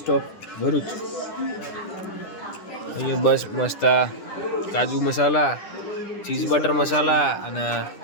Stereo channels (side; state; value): right; late; 10 ms